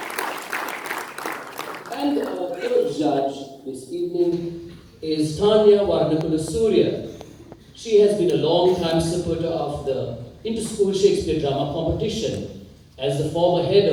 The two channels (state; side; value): identical; both; correlation 1.00